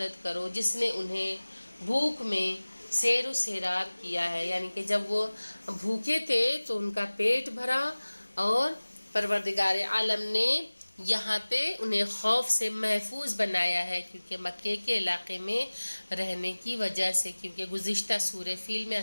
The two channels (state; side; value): inverted; both; correlation -1.00